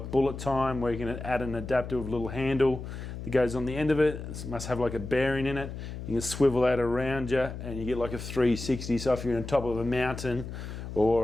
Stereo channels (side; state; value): left; noise; hum, 9 dB below the sound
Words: bullet time, where you can add an adaptive little handle that goes on the end of it. It must have like a bearing in it. You can swivel that around you and you get like a 360. So if you're on top of a mountain